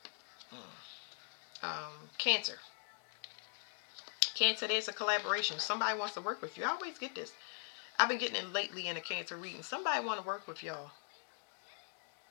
Cancer. Cancer, there's a collaboration. Somebody wants to work with you. I always get this. I've been getting it lately in a Cancer reading. Somebody want to work with y'all.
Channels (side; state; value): right; silent; 51 dB below the other